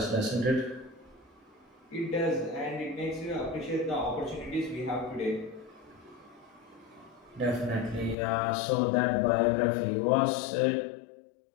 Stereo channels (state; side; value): drops out; right; at 8.2 s